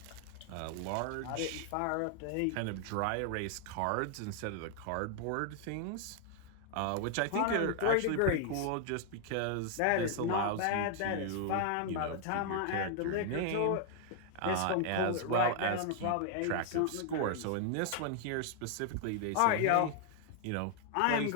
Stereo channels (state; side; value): different; both; correlation 0.00